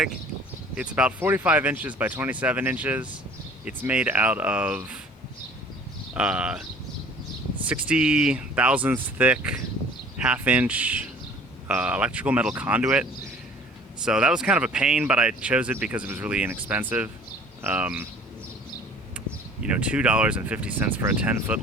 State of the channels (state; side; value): normal; both; correlation 0.50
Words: It's about 45 inches by 27 inches. It's made out of 60 thousandths thick, half-inch electrical metal conduit. So that was kind of a pain, but I chose it because it was really inexpensive. $2.50 for a 10-foot